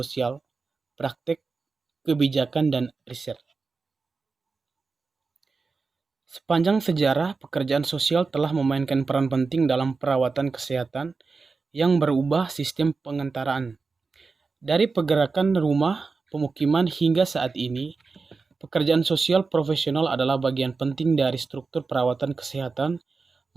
Praktek, Kebijakan, dan Riset. Sepanjang sejarah, pekerjaan sosial telah memainkan peran penting dalam perawatan kesehatan yang berubah sistem pengantaraan. Dari pergerakan rumah, pemukiman hingga saat ini, pekerjaan sosial profesional adalah bagian penting dari struktur perawatan kesehatan,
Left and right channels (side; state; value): left; quieter; 4.4 dB